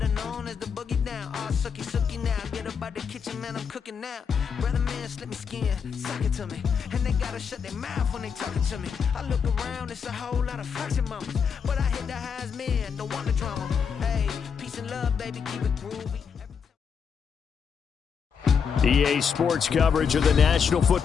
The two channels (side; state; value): right; quieter; 6.6 dB